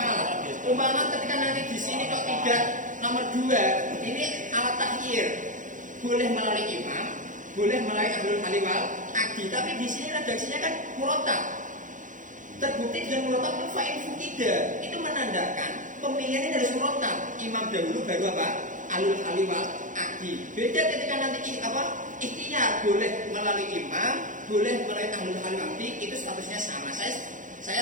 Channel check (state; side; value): late; left; 0.37 ms